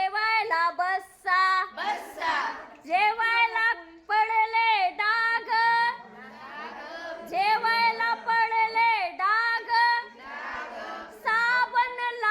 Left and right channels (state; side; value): identical; both; correlation 1.00